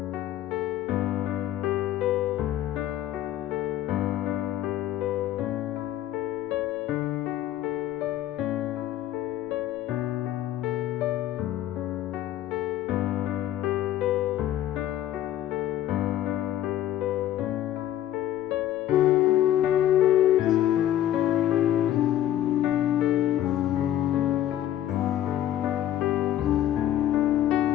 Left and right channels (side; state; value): right; quieter; 12.4 dB